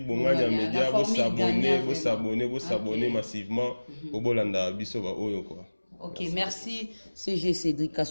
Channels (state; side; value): inverted; both; correlation -1.00